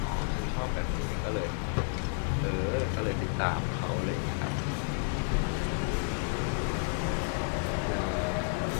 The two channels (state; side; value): silent; right; 57 dB below the other